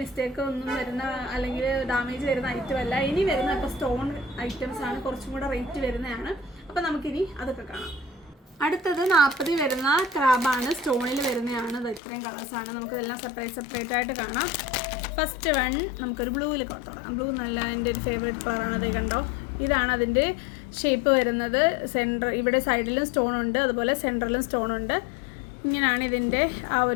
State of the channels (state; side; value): drops out; right; at 12.0 s